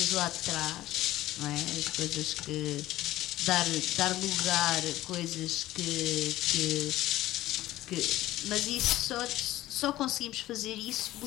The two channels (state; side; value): quieter; right; 15.6 dB